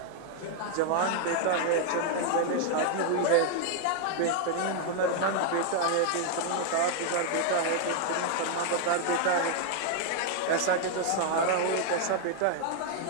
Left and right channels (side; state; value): both; different; correlation 0.00